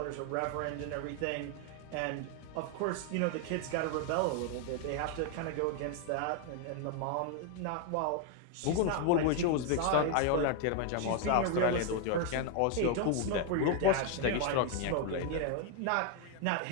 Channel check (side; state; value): both; different; correlation 0.00